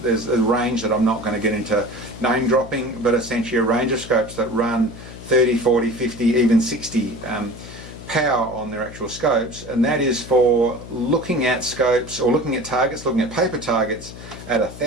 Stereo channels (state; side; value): noise; left; hum, 14 dB below the sound